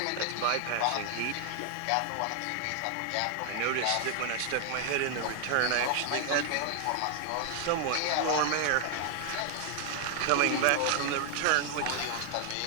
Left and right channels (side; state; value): both; different; correlation 0.00